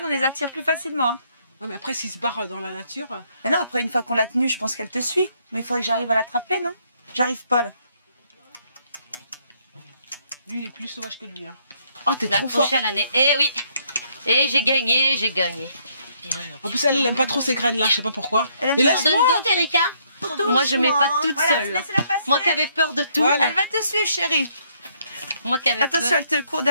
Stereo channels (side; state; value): both; inverted; correlation -0.70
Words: on les attire plus facilement. Hein. Ouais, mais après s'ils se barrent dans la nature... Mais non, après une fois qu'on l'a tenue, je pense qu'elle te suit. Mais il faudrait que j'arrive à l'attraper, non? J'arrive pas là. Lui il est plus sauvage que lui, hein. Oh, t'es La trop fort. prochaine année. Eh oui. Et j'ai gagné, j'ai gagné. En plus, elle aime pas trop ces graines-là, je sais pas pourquoi. Elle aime Mais bien. laisse-moi. Donne d'autres, Erika. Moi, je mets pas toute Voilà, seule. là. laissez-la passer. Moi qui avais peur de tout. Voilà. Elle va te suivre, chérie. Moi qui avais Attention, peur. elle te court